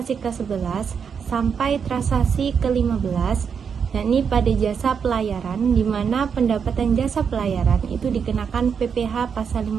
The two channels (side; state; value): left; quieter; 6.7 dB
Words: ke-11 sampai transaksi ke-15, yakni pada jasa pelayaran, di mana pendapatan jasa pelayaran itu dikenakan PPh pasal